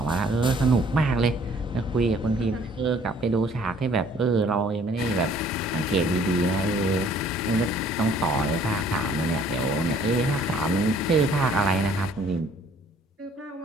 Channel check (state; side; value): normal; both; correlation 0.58